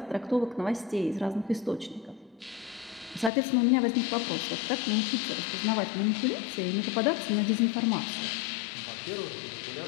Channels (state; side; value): drops out; right; at 3.3 s